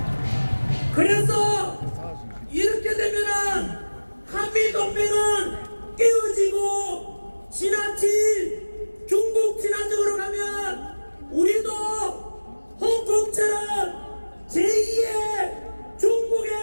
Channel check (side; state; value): both; inverted; correlation -1.00